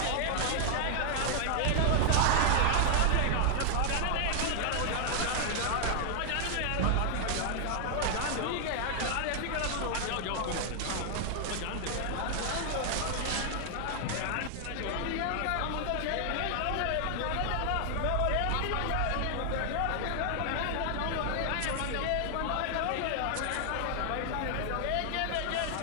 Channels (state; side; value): different; both; correlation 0.00